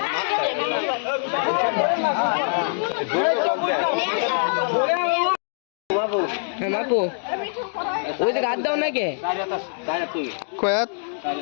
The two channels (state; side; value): silent; right; digital silence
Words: বাপু ওই যে গাছ দাও নাকি কয়াত